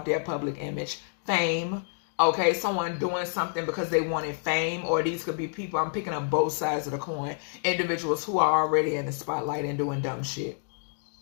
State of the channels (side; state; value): right; silent; digital silence